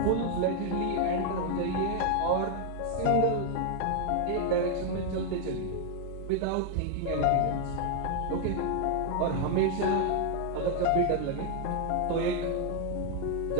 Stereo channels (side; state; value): both; different; correlation 0.00